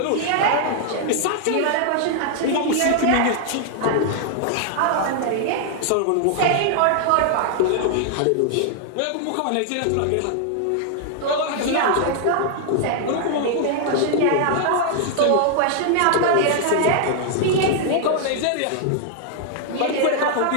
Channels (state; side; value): different; both; correlation 0.00